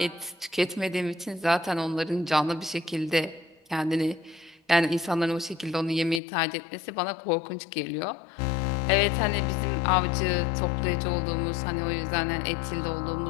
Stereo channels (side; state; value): right; drops out; at 6.2 s